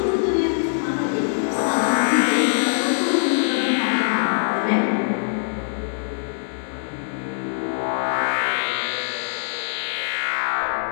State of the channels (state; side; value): silent; right; digital silence